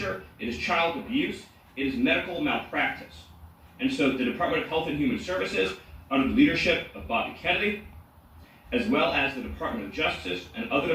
It is child abuse. It is medical malpractice. And so the Department of Health and Human Services, under the leadership of Bobby Kennedy, as well as the Department of Justice and other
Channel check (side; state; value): both; identical; correlation 1.00